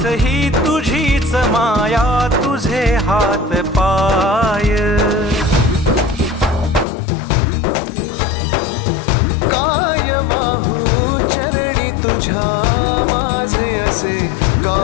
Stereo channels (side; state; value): right; drops out; at 6.9 s